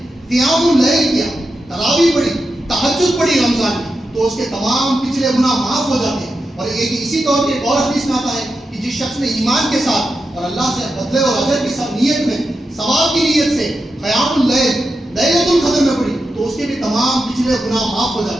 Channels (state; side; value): normal; both; correlation 0.89